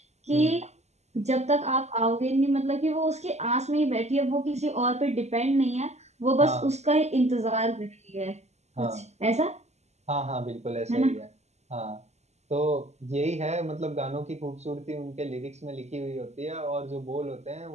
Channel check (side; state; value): left; late; 0.32 ms